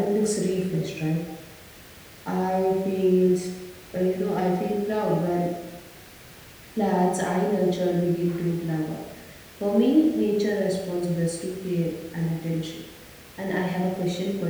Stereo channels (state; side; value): identical; both; correlation 1.00